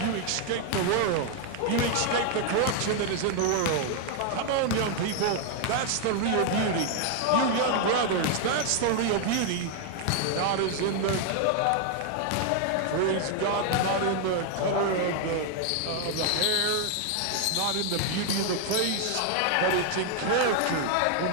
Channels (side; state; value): both; different; correlation 0.00